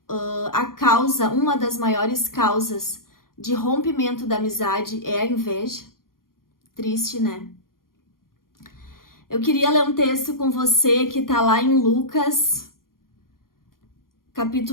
uma das maiores causas de rompimento da amizade é a inveja? Triste, né? Eu queria ler um texto com você que tá lá em Lucas,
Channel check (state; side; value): late; right; 0.91 ms